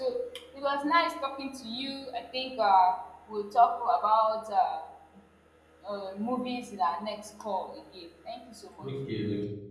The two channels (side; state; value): both; identical; correlation 1.00